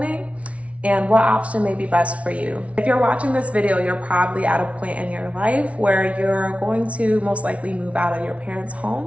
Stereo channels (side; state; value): left; late; 0.064 ms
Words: and what option may be best for you. If you're watching this video, you're probably at a point in your life where you're going to most likely move out of your parents'